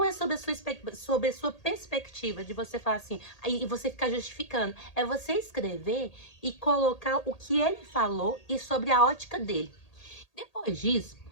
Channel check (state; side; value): late; right; 1.8 ms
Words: é sobre sobre a sua perspectiva de você falar assim, aí você ficar justificando, é você escrever e colocar o que ele falou e sobre a ótica dele. Depois disso,